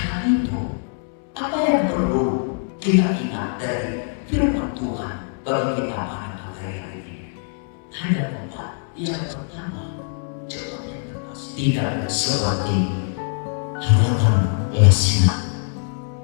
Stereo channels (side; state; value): right; silent; 61 dB below the other